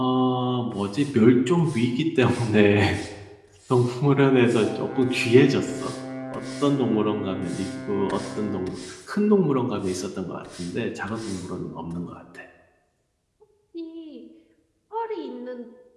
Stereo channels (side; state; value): both; identical; correlation 1.00